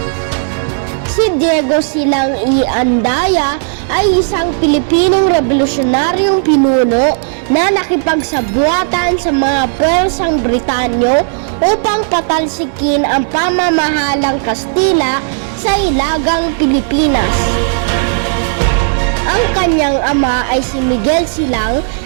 Si Diego Silang y Andaya ay isang Pilipinong revolusyonaryong pinuno na nakipagsabuatan sa mga puwersang Britanyo upang patalsikin ang pamamahalang Kastila sa Hilagang Pilipinas. Ang kanyang ama ay si Miguel Silang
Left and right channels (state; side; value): silent; left; 69 dB below the other